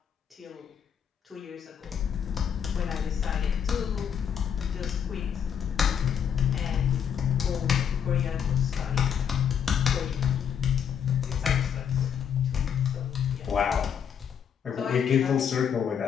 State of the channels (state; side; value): quieter; right; 8.0 dB